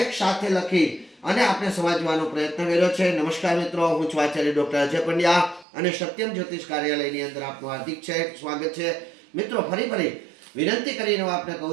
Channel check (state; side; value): drops out; left; at 5.7 s